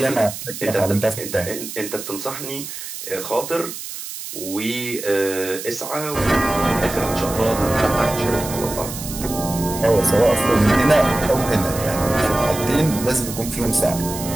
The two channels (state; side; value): noise; right; hiss, 9 dB below the sound